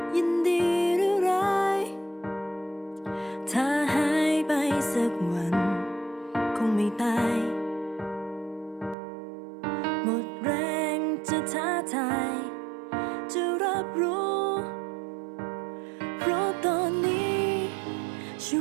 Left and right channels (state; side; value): drops out; left; at 9.0 s